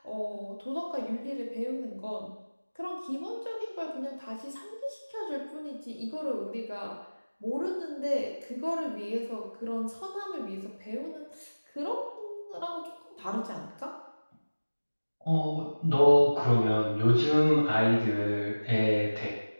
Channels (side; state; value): both; inverted; correlation -1.00